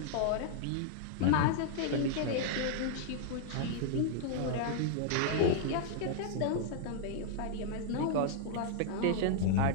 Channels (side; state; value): both; different; correlation -0.01